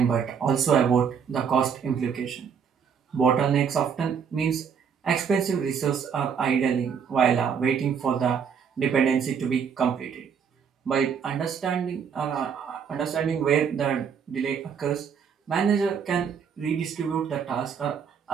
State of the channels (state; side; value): quieter; left; 7.0 dB